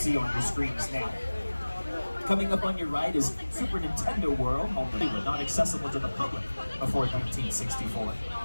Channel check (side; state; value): both; inverted; correlation -1.00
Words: on your screens now. Coming up on your right is Super Nintendo World, home to Hollywood, not accessible to the public before 1964.